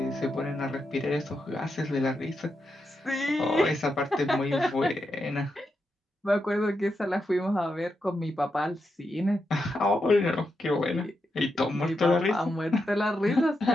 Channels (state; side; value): normal; both; correlation 0.85